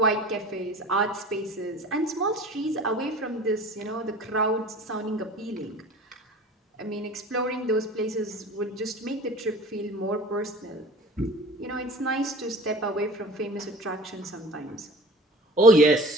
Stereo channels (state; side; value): normal; both; correlation 0.42